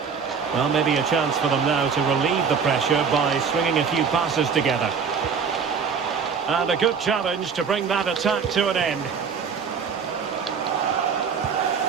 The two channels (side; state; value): left; quieter; 6.2 dB